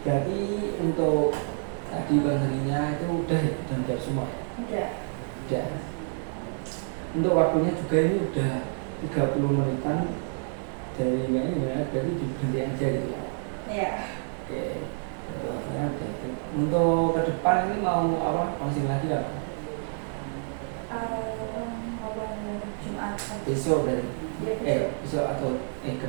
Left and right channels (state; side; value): silent; left; 59 dB below the other